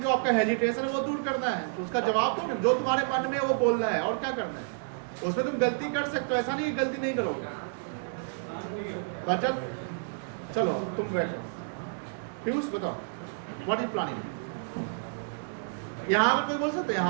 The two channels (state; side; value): silent; left; digital silence